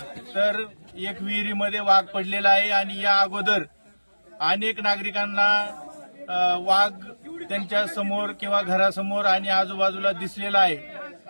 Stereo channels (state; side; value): inverted; both; correlation -1.00